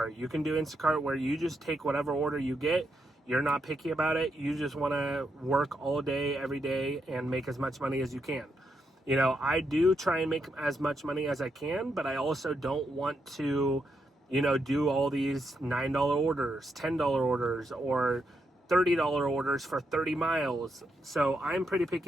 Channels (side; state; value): both; normal; correlation 0.81